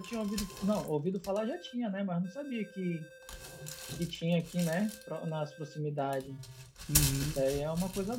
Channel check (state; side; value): identical; both; correlation 1.00